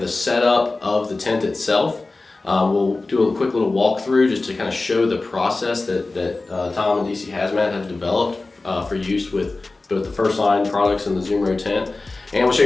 the setup of the tent itself. We'll do a quick little walkthrough just to kind of show the process that Tom and DC Hazmat have developed for use with both the First Line products and the Zumro tent. And we'll show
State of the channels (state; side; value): quieter; right; 3.4 dB